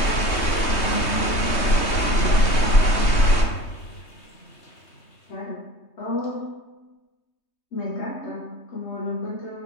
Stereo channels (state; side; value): late; right; 3.2 ms